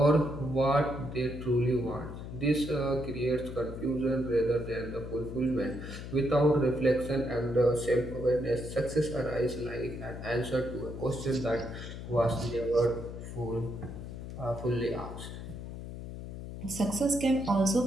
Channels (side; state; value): left; noise; hum, 9 dB below the sound